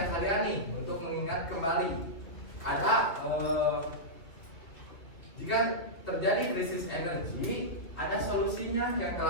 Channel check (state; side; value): late; right; 2.9 ms